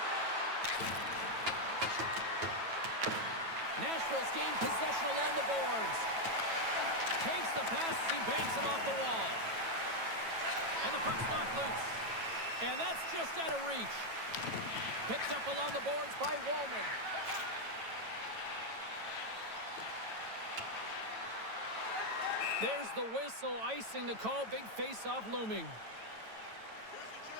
Nashville's gained possession along the boards. Takes the pass, he banks it off the wall. And the puck's knocked loose. And that's just out of reach. Picked up along the boards by Wallman. There's the whistle, icing the call, big face-off looming.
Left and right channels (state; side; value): late; left; 9.1 ms